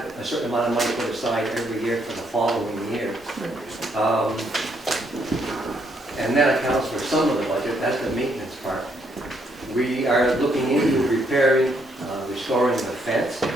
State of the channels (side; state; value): both; normal; correlation 0.73